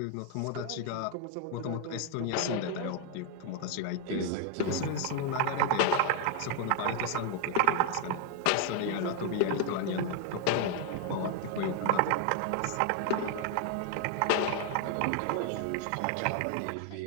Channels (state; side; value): different; both; correlation 0.00